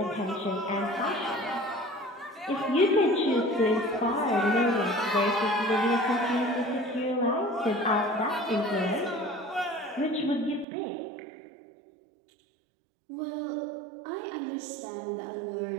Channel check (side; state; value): left; drops out; at 10.7 s